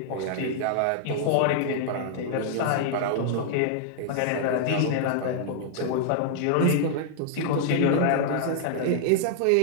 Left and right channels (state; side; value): different; both; correlation 0.00